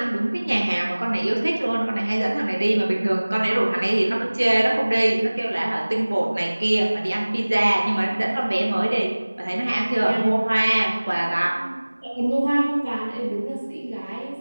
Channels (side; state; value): both; inverted; correlation -1.00